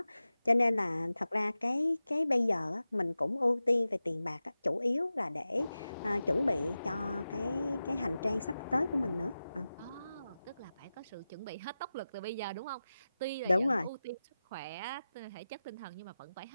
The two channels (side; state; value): both; inverted; correlation -0.94